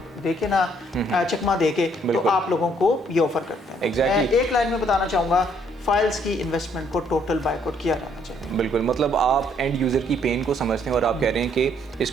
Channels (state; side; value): normal; both; correlation 0.67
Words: देके ना चकमा देके तो आप लोगों को ये ऑफर करते हैं। मैं एक लाइन में बताना चाहूँगा, फाइल्स की इन्वेस्टमेंट को टोटल बाइकआउट किया जाना चाहिए। बिल्कुल, मतलब आप एंड यूज़र की पेन को समझते हैं और आप कह रहे हैं कि